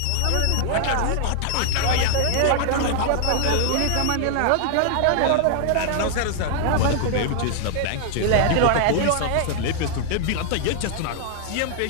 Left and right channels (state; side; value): different; both; correlation 0.00